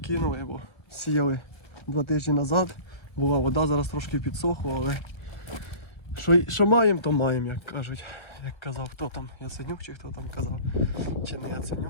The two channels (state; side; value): late; right; 1.2 ms